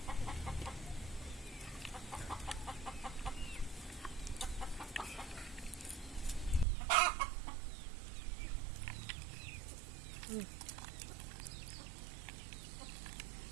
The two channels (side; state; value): left; drops out; at 6.7 s